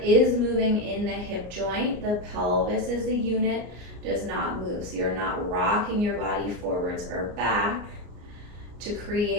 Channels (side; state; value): left; late; 34 ms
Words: is moving in the hip joint, the pelvis as a unit does not move. So you're not rocking your body forwards or back to